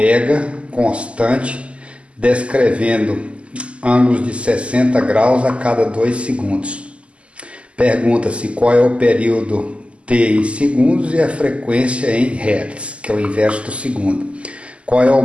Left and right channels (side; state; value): left; late; 0.057 ms